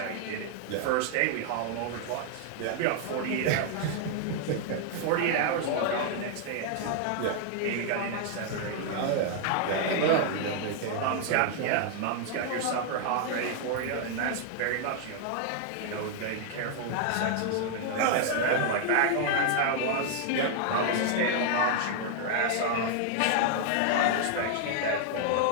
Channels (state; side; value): different; both; correlation 0.00